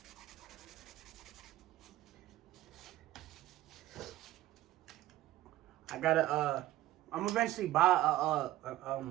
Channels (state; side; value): quieter; left; 15.1 dB